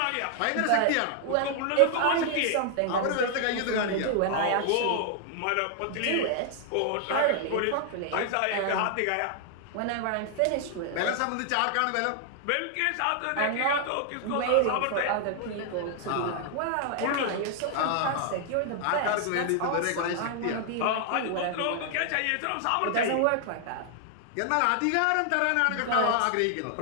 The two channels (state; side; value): different; both; correlation 0.00